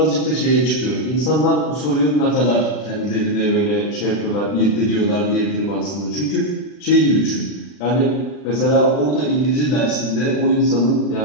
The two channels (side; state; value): right; late; 40 ms